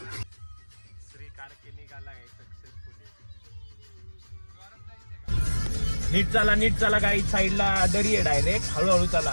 श्री कारके निघाला आहे सक्सेसफुली. नीट चला काही साईडला दरी आहे डायरेक्ट. हळूहळू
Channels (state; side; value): inverted; both; correlation -1.00